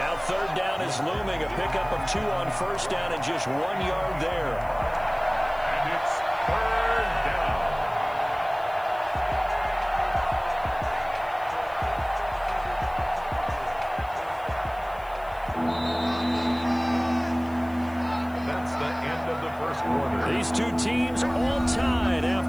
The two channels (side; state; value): left; noise; hiss, 26 dB below the sound